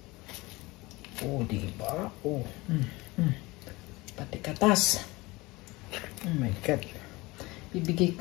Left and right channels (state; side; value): quieter; right; 22.2 dB